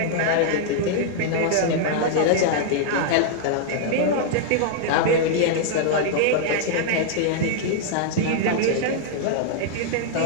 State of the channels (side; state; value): both; different; correlation -0.01